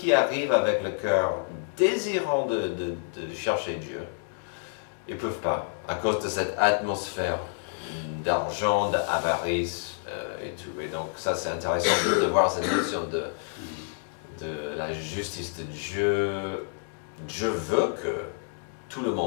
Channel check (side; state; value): right; silent; digital silence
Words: arrivent avec le cœur désirant de chercher Dieu, ils ne peuvent pas, à cause de cette atmosphère d'argent, d'avarice et tout. Et donc ça, c'est intéressant de voir cette notion de la justice de Dieu. Dieu veut que tout le